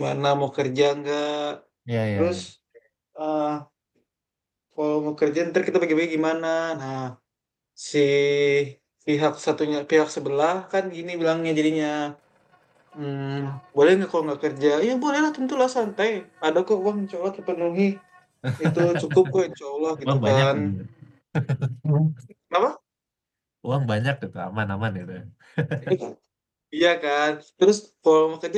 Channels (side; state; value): both; identical; correlation 1.00